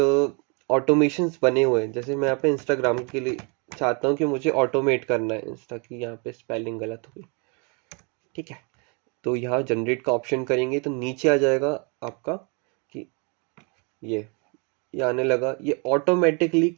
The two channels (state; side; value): quieter; left; 34.0 dB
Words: automations बने हुए हैं। जैसे मैं यहाँ पे इंस्टाग्राम के लिए चाहता हूँ कि मुझे ऑटोमेट करना है इंस्टा की, यहाँ पे स्पेलिंग गलत हो गई, ठीक है। तो यहाँ जनरेट का ऑप्शन करेंगे तो नीचे आ जाएगा आपका कि ये आने लगा। ये ऑटोमेटिकली